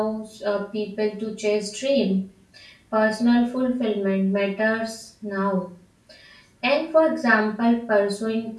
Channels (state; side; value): identical; both; correlation 1.00